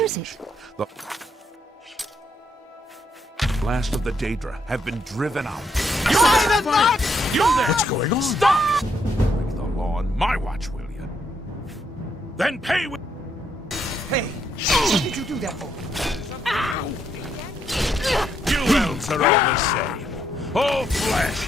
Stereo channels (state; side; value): normal; both; correlation 0.75